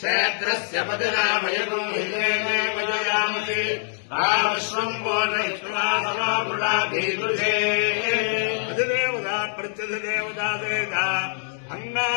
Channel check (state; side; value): silent; right; digital silence